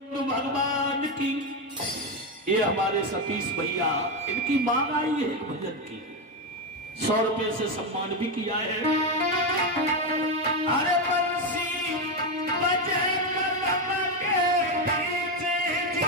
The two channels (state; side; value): normal; both; correlation 0.09